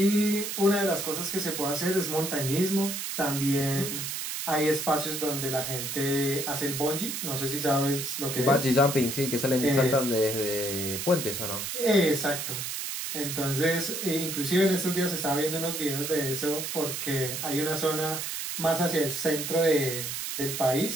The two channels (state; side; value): noise; right; hiss, 4 dB below the sound